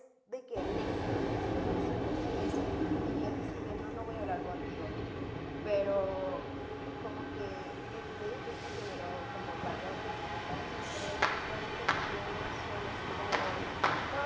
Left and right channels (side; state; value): both; identical; correlation 1.00